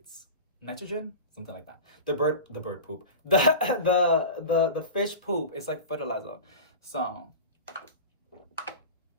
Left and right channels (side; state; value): both; inverted; correlation -0.30